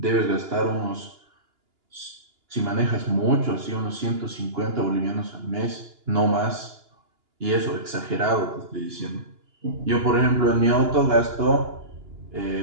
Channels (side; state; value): left; late; 2.9 ms